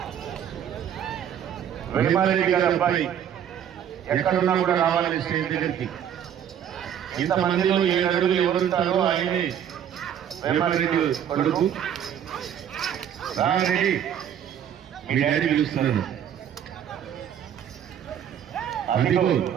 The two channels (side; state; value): left; quieter; 9.4 dB